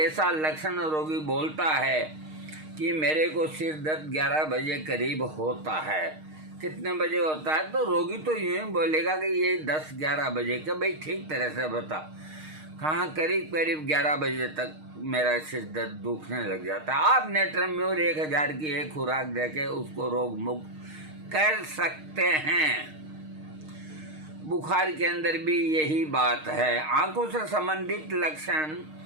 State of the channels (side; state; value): left; late; 6.5 ms